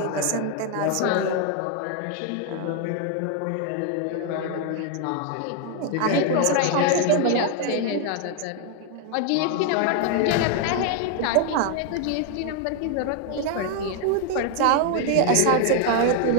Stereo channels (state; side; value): different; both; correlation 0.00